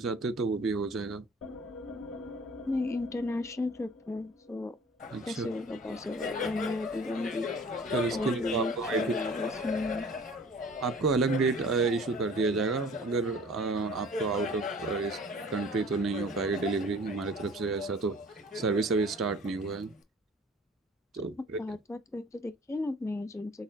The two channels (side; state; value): both; normal; correlation 0.48